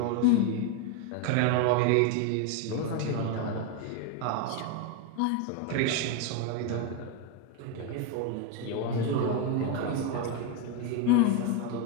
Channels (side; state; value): both; different; correlation 0.02